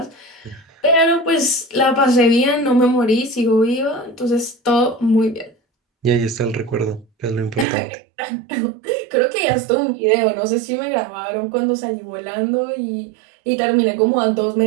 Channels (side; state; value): left; drops out; at 7.7 s